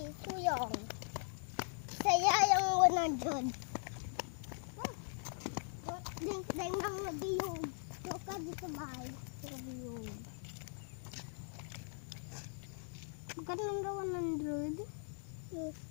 yung. Saya yung 100. Deng nang nabiyog. Yoka dito bahay. Nabiyog. Magkano lang daw 100? Yes.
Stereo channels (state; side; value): silent; right; 51 dB below the other